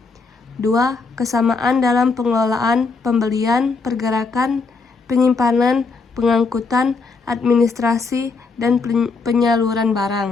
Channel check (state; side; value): quieter; right; 4.3 dB